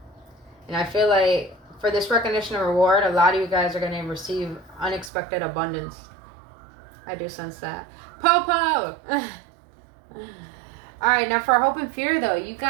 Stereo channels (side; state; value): left; drops out; at 5.1 s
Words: And I feel like for this recognition and reward, a lot of you guys are going to receive unexpected abundance. I do sense that. Popo! Alright, now for hope and fear, though, you